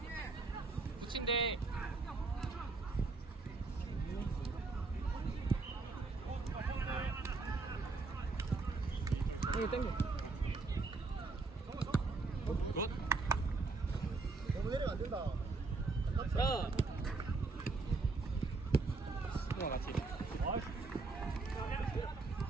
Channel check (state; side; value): quieter; left; 3.8 dB